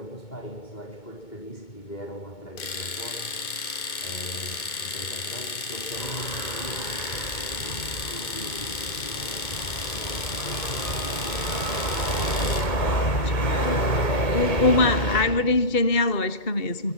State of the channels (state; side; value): late; right; 2.2 ms